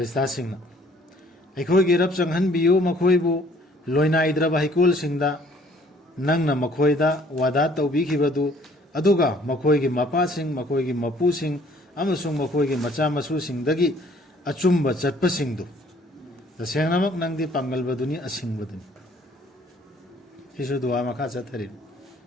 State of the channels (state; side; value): normal; both; correlation 0.59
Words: सिंह ना अखोई की रब चंगहन बियो मखोइबु लोइना इद्रबा हिकोल सिंह दा नंग ना मखोइदा वादा तौबीखिबदु अदुगा मखोइगी मपा सिंह मखोइगी मपू सिंह अमसुंग मखोइगी मचा मसु सिंह दगी अचुम्ब चटप सिंह दु तसेंगनमक नंगदी पांगलबदुनी असिंगबदुनी हिसु दुआ मखा चथरि